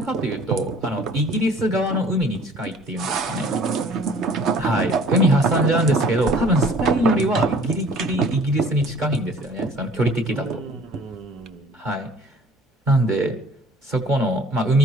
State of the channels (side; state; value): both; normal; correlation 0.51